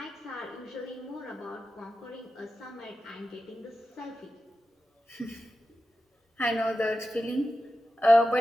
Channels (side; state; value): both; normal; correlation 0.92